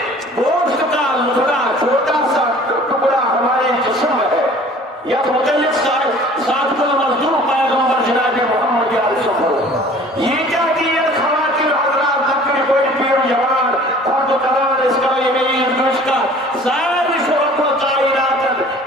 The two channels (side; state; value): both; normal; correlation 0.48